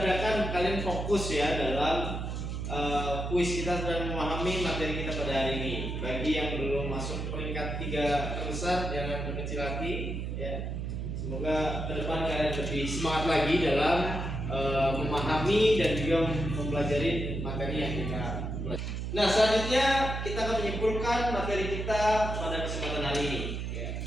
kalian fokus ya dalam kuis kita dan memahami materi kita pada hari ini. Bagi yang belum masuk peringkat 3 terbesar, jangan berkecil hati ya. Semoga ke depan kalian lebih semangat lagi dalam memahami dan juga mempelajari materi yang kita pelajari. Nah, selanjutnya kita akan menyimpulkan materi kita pada kesempatan hari ini. Ya.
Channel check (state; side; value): noise; right; hum, 4 dB below the sound